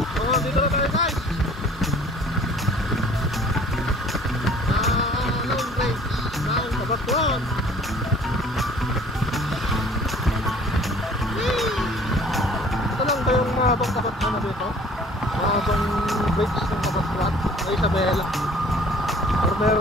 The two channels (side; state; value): both; normal; correlation 0.52